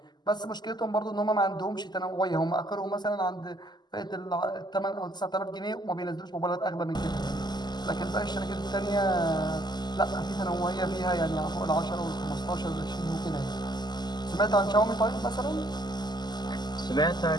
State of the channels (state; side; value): late; right; 0.21 ms